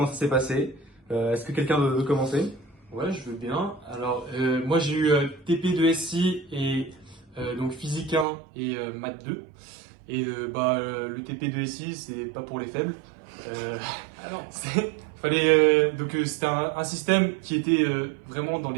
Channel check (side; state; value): left; drops out; at 8.2 s